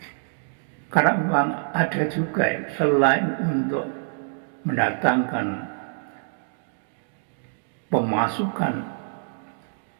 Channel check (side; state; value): left; silent; digital silence